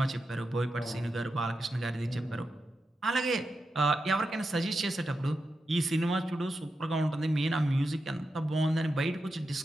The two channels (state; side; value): normal; both; correlation 0.88